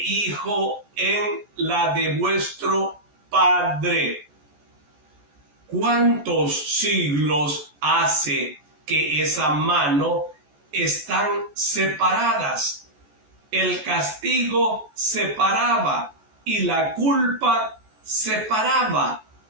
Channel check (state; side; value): late; left; 14 ms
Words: en la de vuestro Padre. ¿Cuántos siglos hace que esa mano están separadas? El castigo separaba y la culpa separaba.